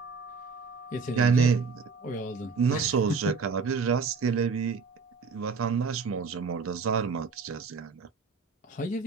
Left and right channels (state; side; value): quieter; left; 4.9 dB